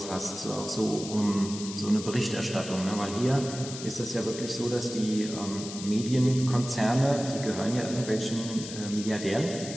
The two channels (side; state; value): left; noise; hiss, 10 dB below the sound